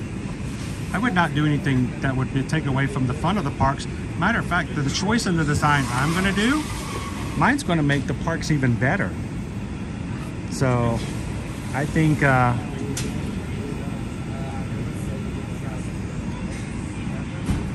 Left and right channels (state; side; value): identical; both; correlation 1.00